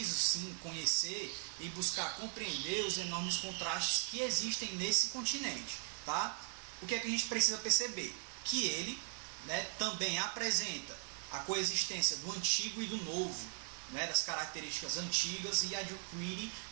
sim conhecer e buscar compreender os enormes contrastes que existem nesse continente. Tá? O que é que a gente precisa perceber? Que ele, né, também apresenta a coexistência do antigo e do novo, né, das características antigas, e adquire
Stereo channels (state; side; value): silent; left; 52 dB below the other